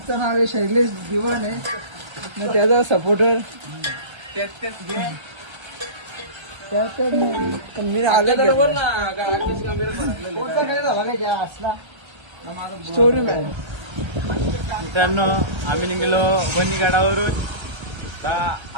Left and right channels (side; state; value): left; late; 1.3 ms